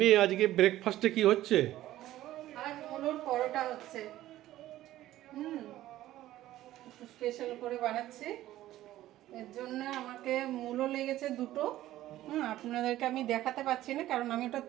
আজকে ব্রেকফাস্টে কি হচ্ছে? আজ মুলোর পরোটা হচ্ছে। হুম, একটু স্পেশাল করে বানাচ্ছি। এর জন্য আমাকে মূলো লেগেছে দুটো। আপনাদেরকে আমি দেখাতে পাচ্ছি না কারণ আমি ওটা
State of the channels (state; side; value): quieter; left; 14.5 dB